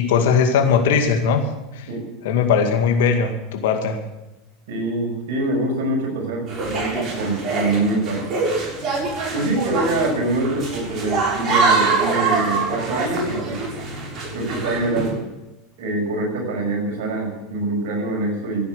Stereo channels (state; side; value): normal; both; correlation 0.08